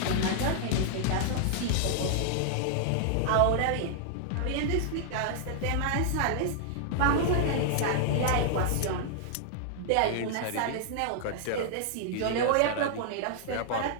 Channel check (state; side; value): different; both; correlation -0.01